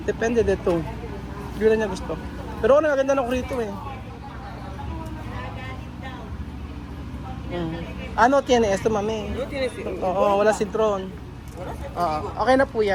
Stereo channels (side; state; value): both; identical; correlation 1.00